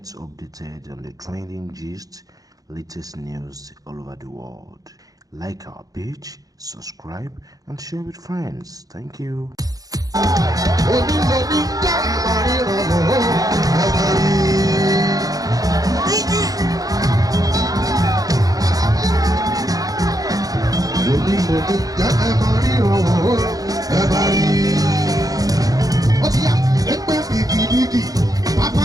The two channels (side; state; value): left; late; 0.17 ms